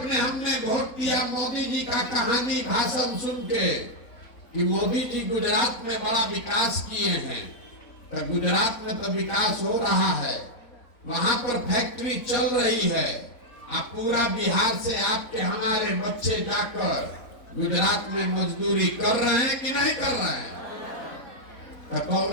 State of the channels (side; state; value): right; late; 4.4 ms